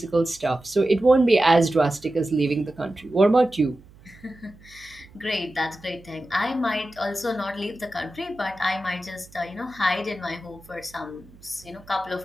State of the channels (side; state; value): right; noise; hum, 24 dB below the sound